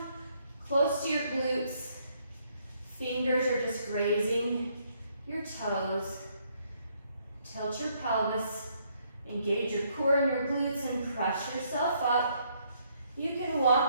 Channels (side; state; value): both; inverted; correlation -0.70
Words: close to your glutes. Fingers are just grazing your toes. Tilt your pelvis, engage your core and your glutes and press yourself up. You can